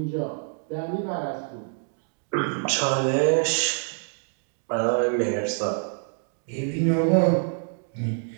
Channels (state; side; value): silent; left; 59 dB below the other